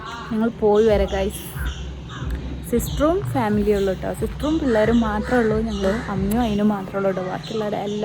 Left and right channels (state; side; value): identical; both; correlation 1.00